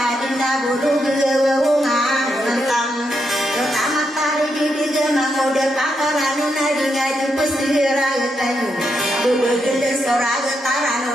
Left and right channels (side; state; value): both; normal; correlation 0.82